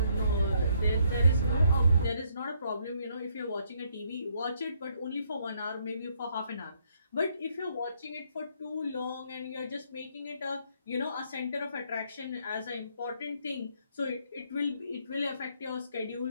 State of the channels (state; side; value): inverted; both; correlation -0.70